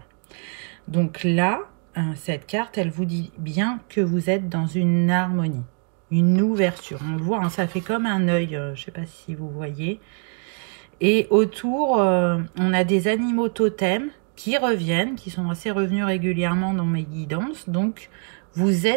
Donc là, cette carte, elle vous dit bien que vous êtes dans une harmonie, une ouverture. On le voit, hein, ça fait comme un œil, je ne sais pas si vous voyez. Et autour, on a des animaux totems qui reviennent, qui sont assez revenus régulièrement dans mes guidances. Donc, vous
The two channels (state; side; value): quieter; left; 39.8 dB